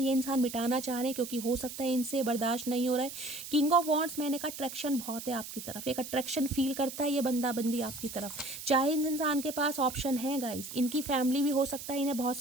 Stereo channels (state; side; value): noise; right; hiss, 10 dB below the sound